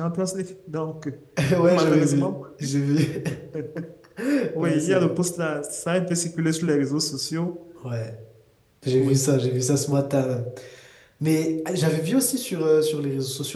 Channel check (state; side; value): identical; both; correlation 1.00